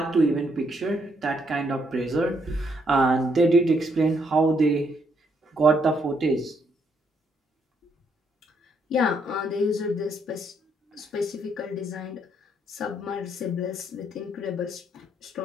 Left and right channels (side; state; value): both; normal; correlation 0.73